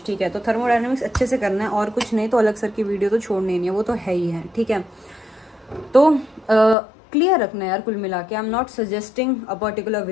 ठीक है। तो थर्मोडायनेमिक्स अच्छे से करना है और कुछ नहीं तो अलग सर की वीडियो तो छोड़नी नहीं है, वो तो है ही है, ठीक है। तो क्लियर रखना है यार, कुल मिला के I am not suggesting a particular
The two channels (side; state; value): right; drops out; at 6.8 s